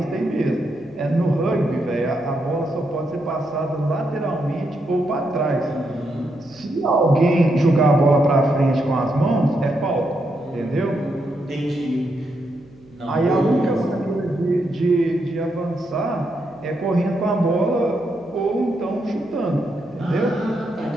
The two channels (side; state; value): right; noise; hum, 26 dB below the sound